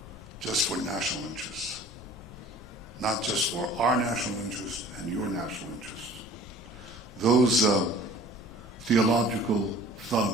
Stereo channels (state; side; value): normal; both; correlation 0.47